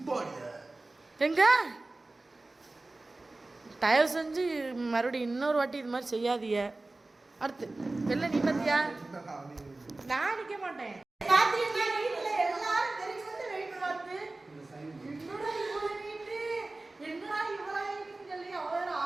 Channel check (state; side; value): quieter; left; 3.1 dB